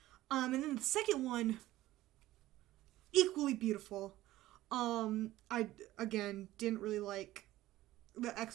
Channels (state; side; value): quieter; left; 15.9 dB